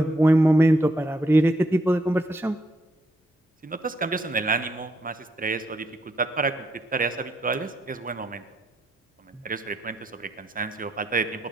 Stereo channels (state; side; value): normal; both; correlation 0.77